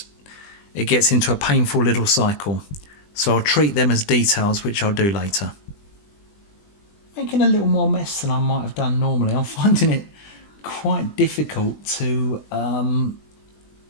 gets into a painful little cycle. So I'll treat them as details, which I'll do later. Making a little more mess than I might have done normally. I'm finding it quite difficult to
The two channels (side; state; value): right; late; 20 ms